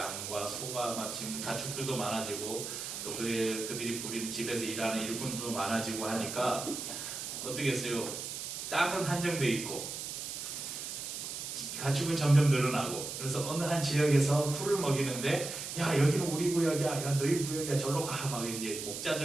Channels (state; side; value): noise; right; hiss, 6 dB below the sound